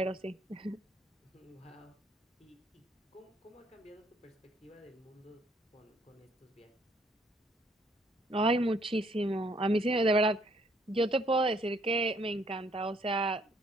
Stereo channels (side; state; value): both; normal; correlation 0.66